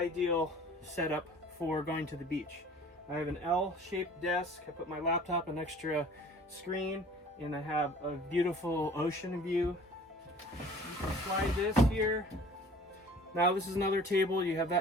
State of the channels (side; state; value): both; normal; correlation 0.48